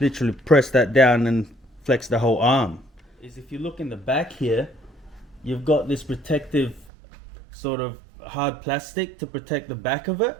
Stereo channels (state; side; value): drops out; left; at 6.9 s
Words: press that down and flex the whole arm. If you look in the back here, you've got this protective sort of hard plastic to protect the back of it,